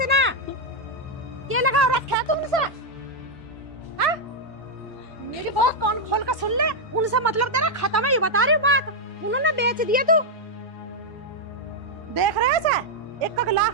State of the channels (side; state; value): both; normal; correlation -0.01